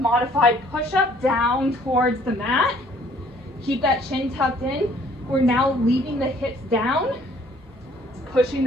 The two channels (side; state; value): both; normal; correlation 0.59